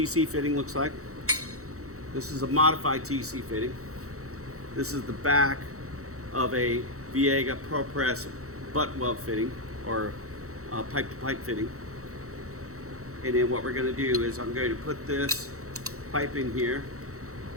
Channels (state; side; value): late; left; 0.64 ms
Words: fitting looks like. This is a modified TC fitting. This is the back of a Viega ProPress butt weld fitting, or pipe to pipe fitting. And then what we're going to do is I'm going to put this pipe in here,